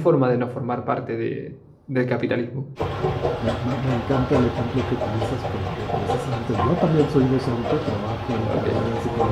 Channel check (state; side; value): identical; both; correlation 1.00